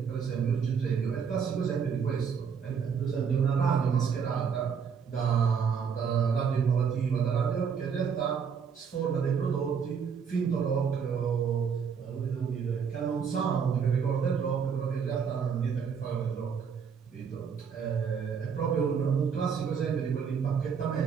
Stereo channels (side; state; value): left; quieter; 6.6 dB